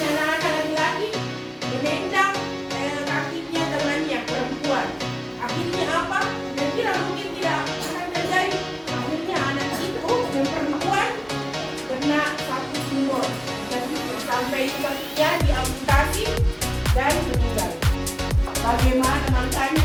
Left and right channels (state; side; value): identical; both; correlation 1.00